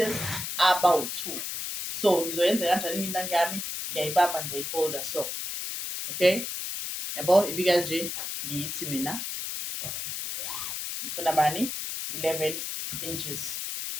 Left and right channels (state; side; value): noise; left; hiss, 4 dB below the sound